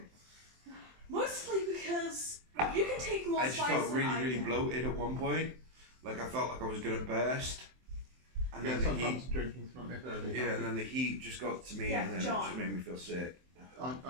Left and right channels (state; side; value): late; left; 23 ms